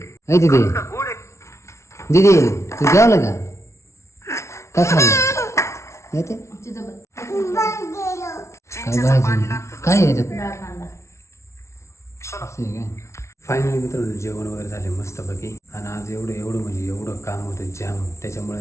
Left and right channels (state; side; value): late; right; 0.13 ms